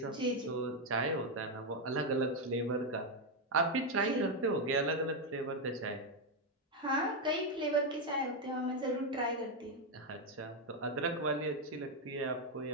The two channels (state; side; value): normal; both; correlation 0.04